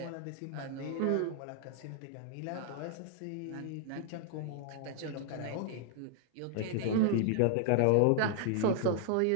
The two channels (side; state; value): both; different; correlation -0.01